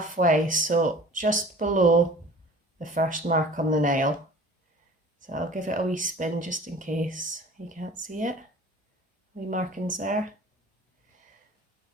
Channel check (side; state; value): both; normal; correlation 0.45